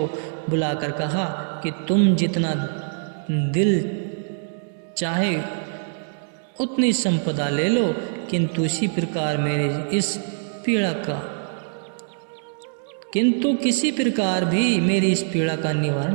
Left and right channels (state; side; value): silent; left; digital silence